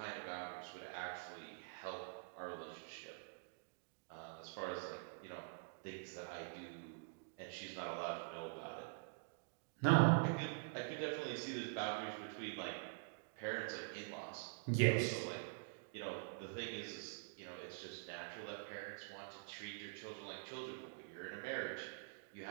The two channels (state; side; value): silent; left; digital silence